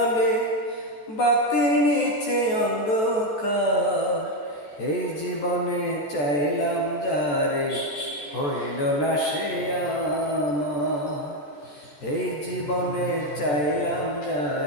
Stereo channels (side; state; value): right; late; 14 ms